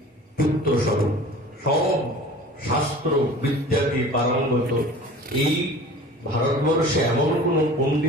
পুত্র স্বরূপ, সব শাস্ত্র বিদ্যাতে পারঙ্গত। এই ভারতবর্ষে এমন কোন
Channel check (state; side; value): normal; both; correlation 0.42